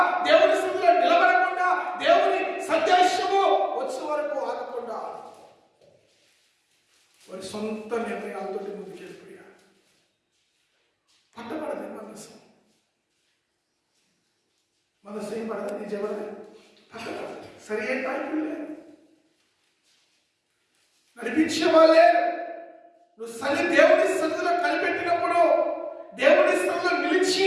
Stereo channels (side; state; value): both; identical; correlation 1.00